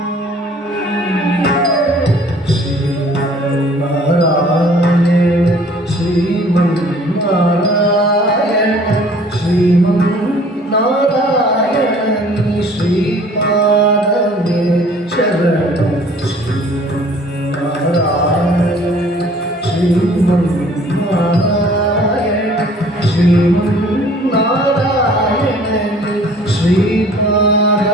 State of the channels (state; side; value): normal; both; correlation 0.53